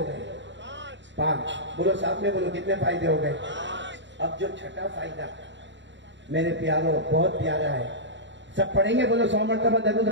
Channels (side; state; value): left; late; 0.53 ms